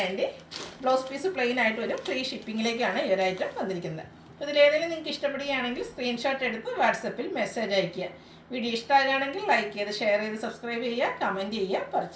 Blouse piece plain ആയിട്ട് വരും. ഫ്രീ ഷിപ്പിങ്ങിലേക്കാണ് ഈ ഒരു ഐറ്റം വന്നിരിക്കുന്നത്. ഇതിലേതെങ്കിലും നിങ്ങൾക്ക് ഇഷ്ടപ്പെടുകയാണെങ്കിൽ സ്ക്രീൻഷോട്ട് എടുത്ത് വാട്സപ്പിൽ മെസ്സേജ് അയയ്ക്കുക. വീഡിയോ ഇഷ്ടമാകുകയാണെങ്കിൽ ലൈക്ക് ചെയ്ത് ഷെയർ ചെയ്ത് സബ്സ്ക്രൈബ് ചെയ്യുക, കമൻറ്റ് ചെയ്യുക,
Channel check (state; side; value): identical; both; correlation 1.00